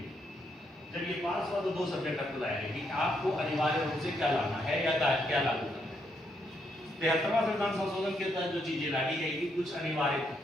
जब ये पास हुआ तो दो सब्जेक्ट आपको लाया गया कि आपको अनिवार्य रूप से क्या लाना है या क्या लागू करना है। 73वां संविधान संशोधन के तहत जो चीजें लाई गई थी कुछ अनिवार्य थी।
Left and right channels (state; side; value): normal; both; correlation 0.77